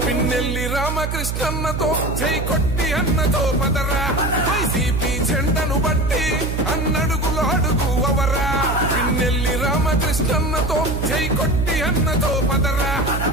పిన్నెల్లి రామకృష్ణన్నతో జై కొట్టి అన్నతో పదరా వైసీపీ జెండను బట్టి అన్నడుగులు అడుగు అవరా పిన్నెల్లి రామకృష్ణన్నతో జై కొట్టి అన్నతో పదరా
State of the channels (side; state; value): right; noise; hum, 2 dB below the sound